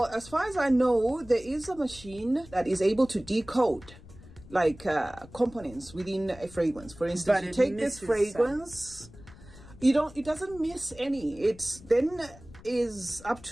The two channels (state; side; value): noise; left; rumble, 20 dB below the sound